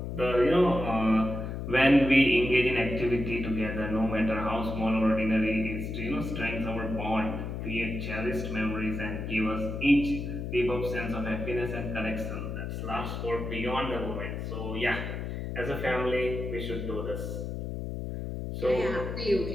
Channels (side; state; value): left; noise; hum, 5 dB below the sound